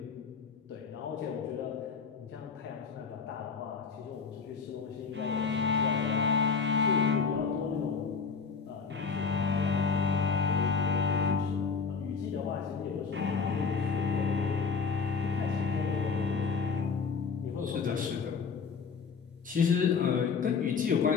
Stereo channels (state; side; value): quieter; right; 5.4 dB